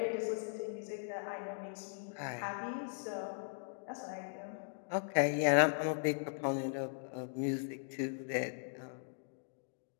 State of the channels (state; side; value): silent; right; digital silence